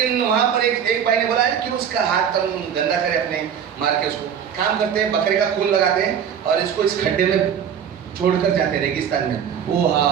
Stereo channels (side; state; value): left; quieter; 8.3 dB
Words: वहां पर एक भाई ने बोला कि उसका हाथ हम गंदा करें अपने, मार के उसको। काम करते हैं, बकरे का खून लगाते हैं और इसको इस खड्डे में छोड़कर जाते हैं रेगिस्तान में। वो